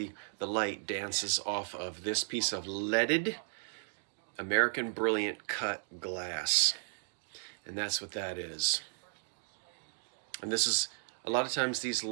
the light dances off of this piece of leaded American Brilliant Cut glass. And that's what that is. And this is, a lot of times these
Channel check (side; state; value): left; silent; digital silence